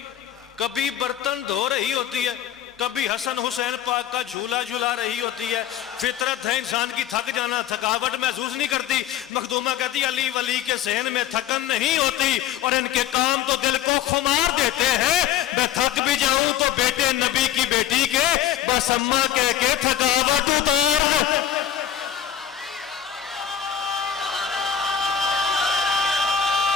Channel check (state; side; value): quieter; right; 10.0 dB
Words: کبھی برتن دھو رہی ہوتی ہے، کبھی حسن حسین پاک کا جھولا جھلا رہی ہوتی ہے۔ فطرت ہے انسان کی تھک جانا، تھکاوٹ محسوس نہیں کرتی۔ مخدومہ کہتی علی ولی کے صحن میں تھکن نہیں ہوتی، اور ان کے کام تو دل کو خمار دیتے ہیں۔ میں تھک بھی جاؤں تو بیٹے نبی کی بیٹی کے بس اماں کہہ کے تھکاوٹ اتار۔